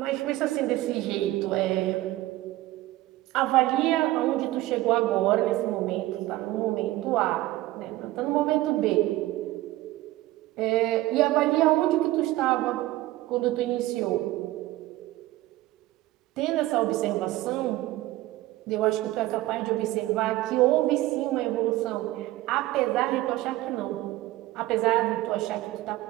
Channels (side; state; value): left; quieter; 17.0 dB